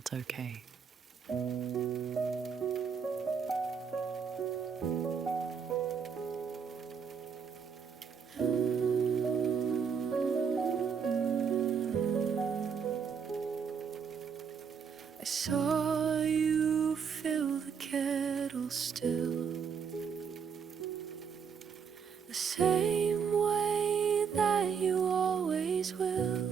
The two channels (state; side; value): quieter; left; 6.6 dB